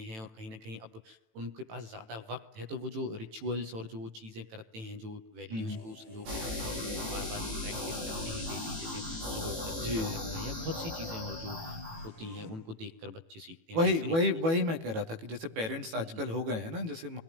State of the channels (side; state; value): left; late; 18 ms